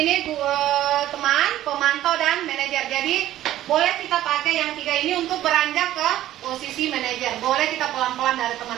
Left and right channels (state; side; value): quieter; left; 13.5 dB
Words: teman, pemantau dan manajer. Jadi boleh kita pakai yang 3 ini untuk beranjak ke posisi manajer. Boleh kita pelan-pelan dari